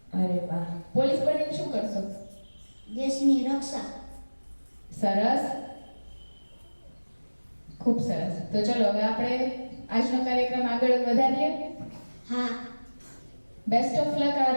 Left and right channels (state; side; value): inverted; both; correlation -1.00